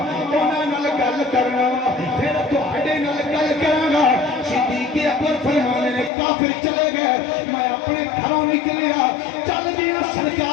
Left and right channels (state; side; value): drops out; right; at 6.1 s